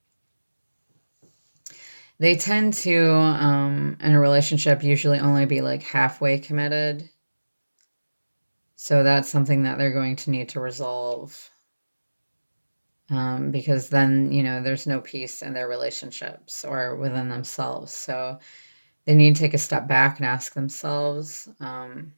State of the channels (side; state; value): both; inverted; correlation -1.00